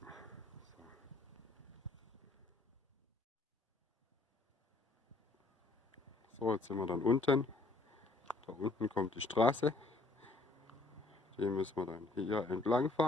So, jetzt sind wir dann unten. Da unten kommt die Straße. Die müssen wir dann hier entlang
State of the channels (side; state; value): right; quieter; 3.4 dB